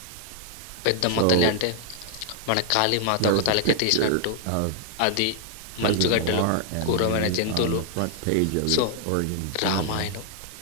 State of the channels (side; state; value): both; different; correlation 0.00